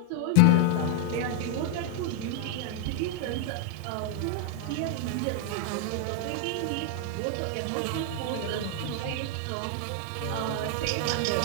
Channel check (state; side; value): different; both; correlation 0.00